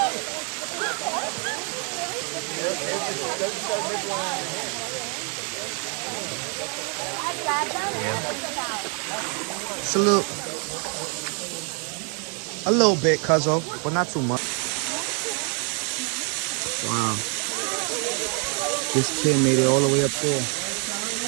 It's a little bit, cuzzo, but not too much. Wow. This kid made it all the way up there.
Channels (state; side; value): quieter; left; 38.3 dB